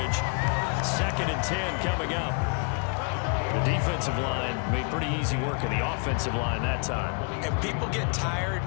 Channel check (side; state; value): right; quieter; 37.1 dB